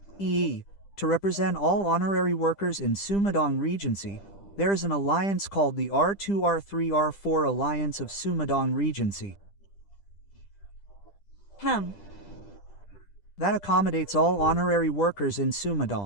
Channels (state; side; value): late; right; 10 ms